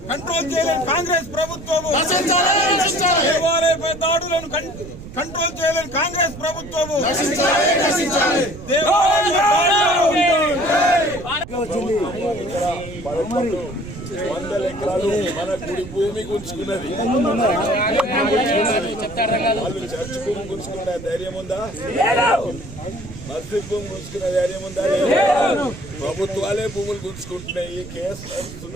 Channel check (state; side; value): noise; right; rumble, 14 dB below the sound